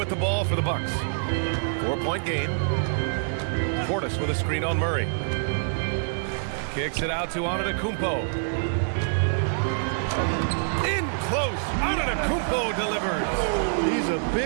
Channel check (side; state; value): left; silent; digital silence